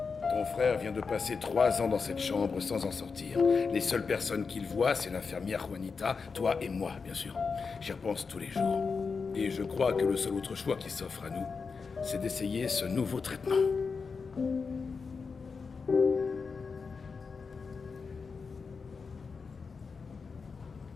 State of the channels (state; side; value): quieter; right; 5.0 dB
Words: frère vient de passer 3 ans dans cette chambre sans en sortir. Les seules personnes qu'il voit, c'est l'infirmière Juanita, toi et moi, bien sûr. J'y repense tous les jours. Et je crois que le seul autre choix qui s'offre à nous, c'est d'essayer ce nouveau traitement.